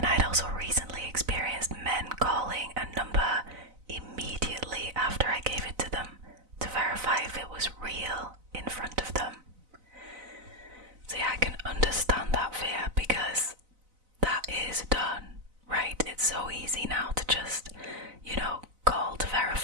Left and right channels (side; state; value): left; late; 4.0 ms